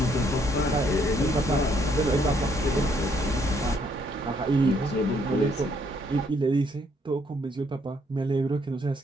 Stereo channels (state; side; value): normal; both; correlation 0.69